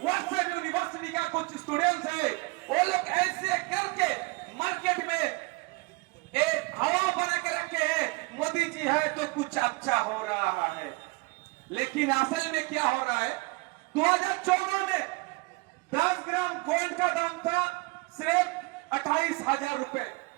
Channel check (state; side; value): quieter; left; 26.5 dB